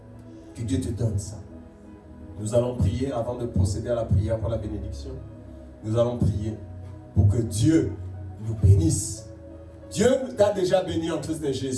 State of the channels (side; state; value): both; identical; correlation 1.00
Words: Que Dieu te donne ça. Nous allons prier avant de procéder à la prière pour la bénédiction. Nous allons prier pour que Dieu nous bénisse. Dieu t'a déjà béni en Christ